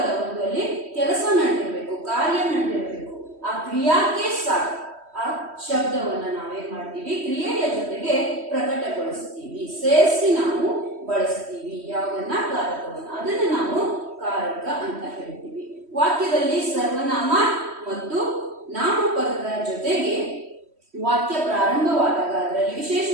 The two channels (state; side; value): late; left; 3.1 ms